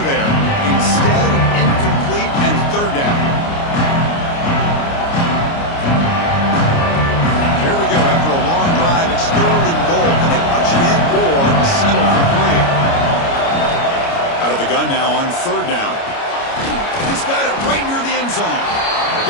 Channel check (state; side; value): late; right; 29 ms